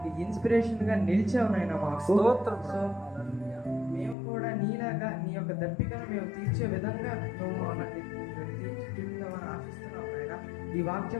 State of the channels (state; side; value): drops out; right; at 4.2 s